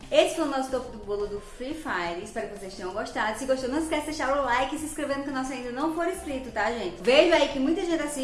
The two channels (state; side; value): identical; both; correlation 1.00